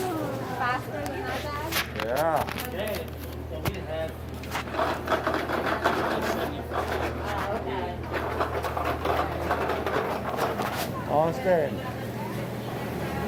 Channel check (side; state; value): both; identical; correlation 1.00